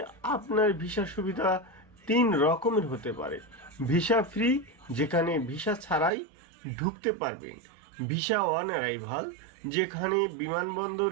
আপনার ভিসা সুবিধা 3 রকমের হতে পারে। ভিসা ফ্রি, যেখানে ভিসা ছাড়াই ঢুকতে পারবেন। ভিসা অন অ্যারাইভাল, যেখানে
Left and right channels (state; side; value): drops out; left; at 6.1 s